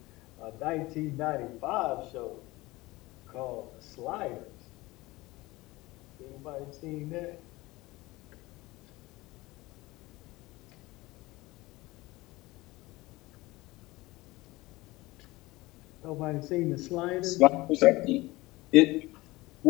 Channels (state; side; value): quieter; right; 20.6 dB